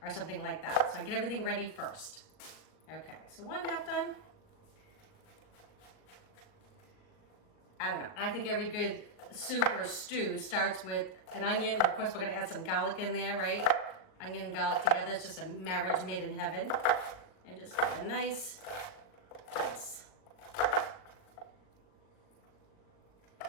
or something like that. So I get everything ready first. Okay, so 1/2 done. I don't know. I think every good soup or stew starts with an onion. Of course, we're gonna add some garlic in there, right? Onion and garlic together, it's just a marriage made in heaven. And just get a nice dice.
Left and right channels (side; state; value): right; late; 39 ms